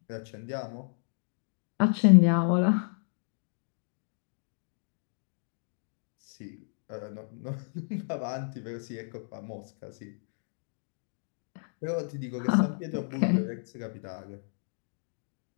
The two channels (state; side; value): silent; right; digital silence